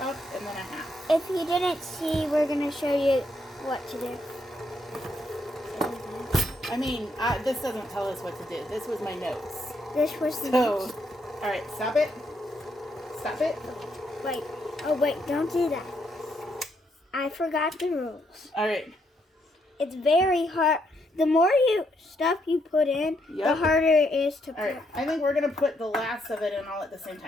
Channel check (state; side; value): normal; both; correlation 0.76